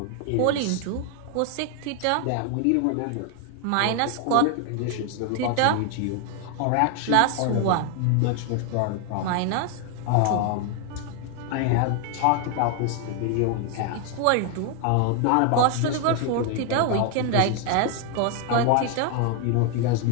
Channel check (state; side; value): different; both; correlation 0.00